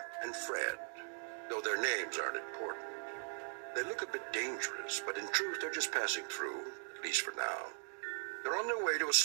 and Fred, though their names aren't important. They look a bit dangerous, but in truth they're just passing through, at least for now. They're on their way to a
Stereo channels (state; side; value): silent; left; 51 dB below the other